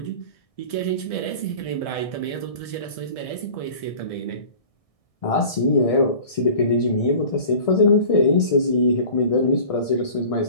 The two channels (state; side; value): late; right; 1.6 ms